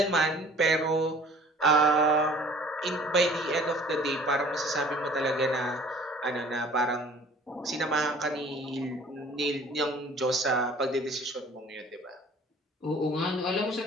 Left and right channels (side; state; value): both; normal; correlation 0.50